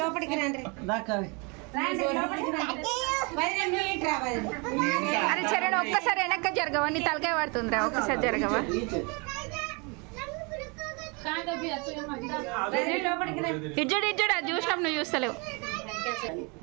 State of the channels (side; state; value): left; quieter; 31.0 dB